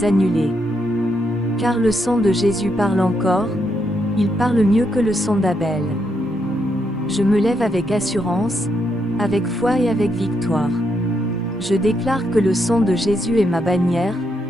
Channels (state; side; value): normal; both; correlation 0.79